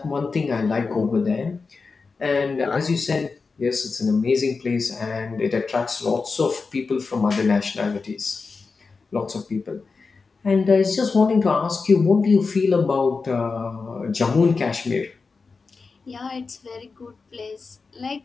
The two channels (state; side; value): quieter; right; 4.5 dB